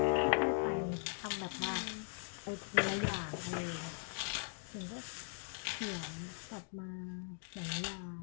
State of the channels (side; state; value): right; silent; 51 dB below the other